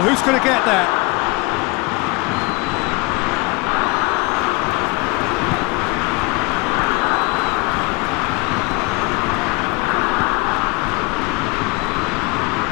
who's going to get that?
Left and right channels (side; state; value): right; quieter; 24.8 dB